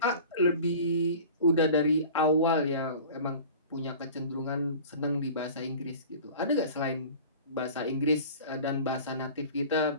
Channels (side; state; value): both; inverted; correlation -0.41